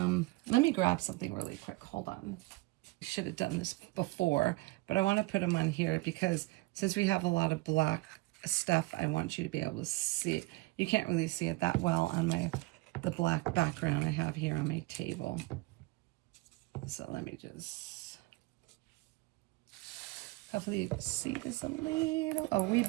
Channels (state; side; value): quieter; left; 21.9 dB